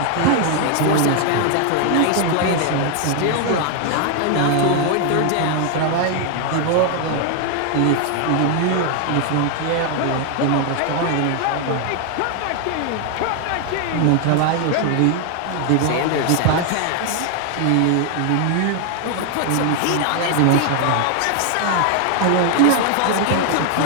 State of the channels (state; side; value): different; both; correlation 0.00